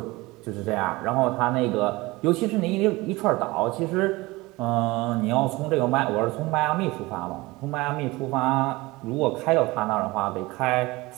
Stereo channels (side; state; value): left; quieter; 21.6 dB